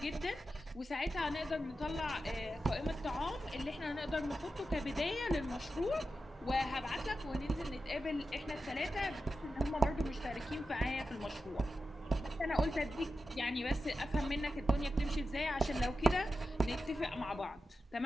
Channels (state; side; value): normal; both; correlation 0.91